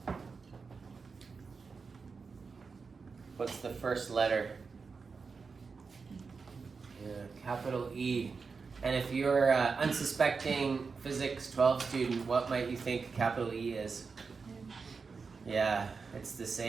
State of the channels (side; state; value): left; quieter; 4.9 dB